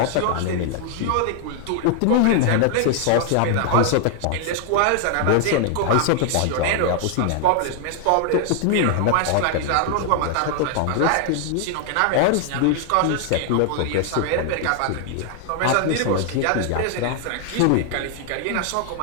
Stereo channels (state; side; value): different; both; correlation 0.00